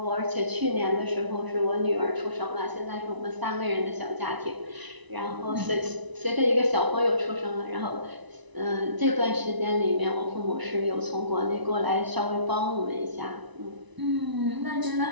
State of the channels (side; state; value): left; late; 1.0 ms